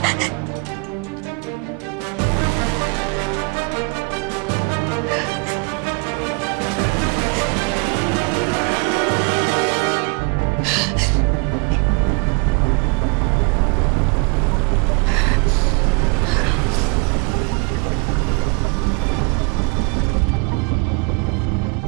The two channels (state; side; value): quieter; left; 32.1 dB